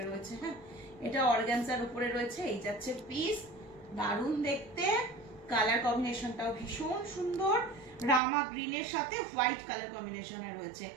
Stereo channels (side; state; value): left; drops out; at 8.2 s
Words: রয়েছে। হ্যাঁ, এটা অর্গানজার উপরে রয়েছে। এই যাচ্ছে পিস, দারুণ দেখতে। কালার কম্বিনেশনটাও ভীষণ সুন্দর, রামা গ্রিনের সাথে হোয়াইট কালার কম্বিনেশনে রয়েছে,